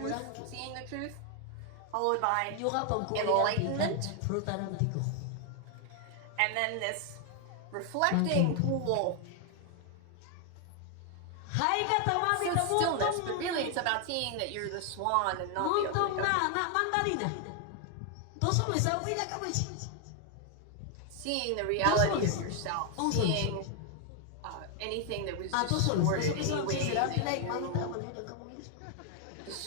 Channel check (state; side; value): different; both; correlation 0.00